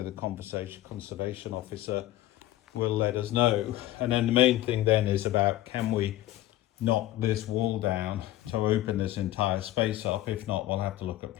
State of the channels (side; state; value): right; quieter; 15.0 dB